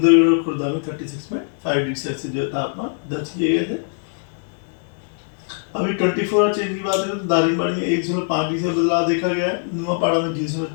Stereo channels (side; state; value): right; silent; 61 dB below the other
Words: और खुर्दा में 36.5 डिग्री सेल्सियस जो तापमान दर्ज किए गए थे। अभी 24 आवर चेंज की बात करें तो दारिंगबाड़ी में 1.5 डिग्री से बदलाव देखा गया है, नुआपाड़ा में